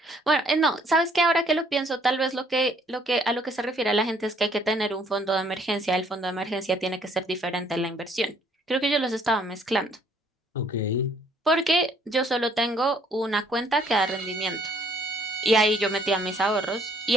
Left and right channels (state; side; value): normal; both; correlation 0.63